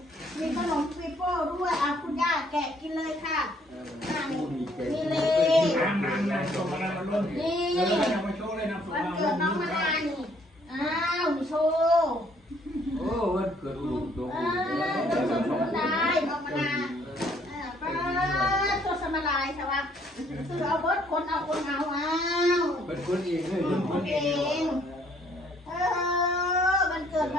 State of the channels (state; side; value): normal; both; correlation 0.64